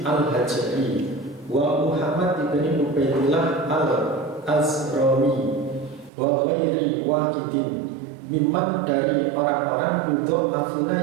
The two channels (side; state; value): left; drops out; at 6.1 s